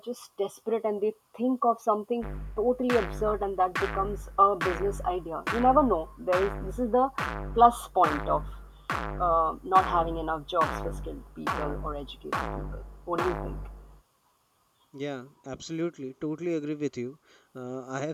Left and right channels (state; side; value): identical; both; correlation 1.00